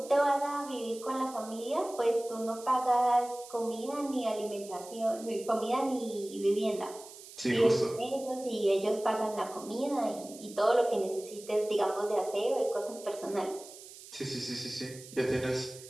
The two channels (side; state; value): right; noise; hiss, 17 dB below the sound